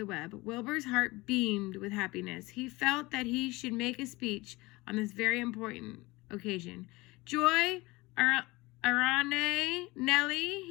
web. Wilbur's heart beamed with happiness. He felt that he should make a speech on this very important occasion. "Joy, Arane, Nellie,"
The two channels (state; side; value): quieter; right; 22.1 dB